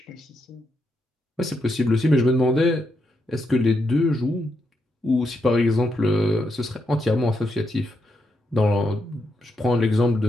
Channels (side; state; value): both; normal; correlation 0.81